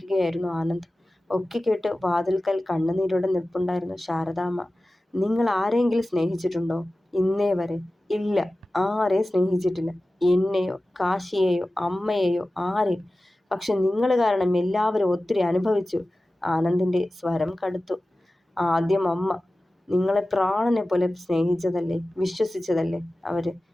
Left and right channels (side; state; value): both; normal; correlation 0.96